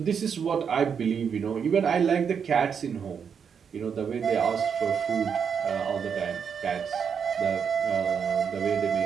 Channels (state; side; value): quieter; left; 7.0 dB